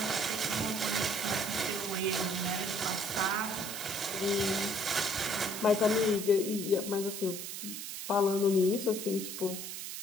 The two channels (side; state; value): right; noise; hiss, 7 dB below the sound